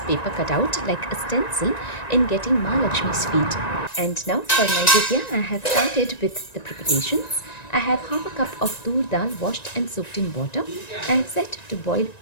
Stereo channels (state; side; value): late; right; 1.9 ms